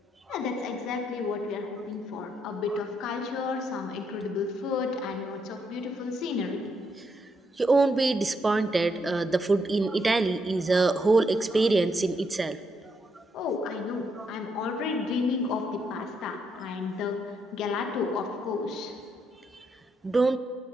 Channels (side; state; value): both; normal; correlation 0.77